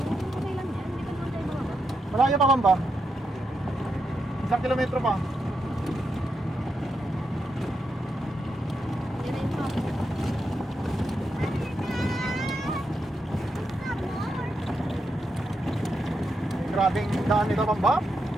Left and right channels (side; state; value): both; normal; correlation 0.84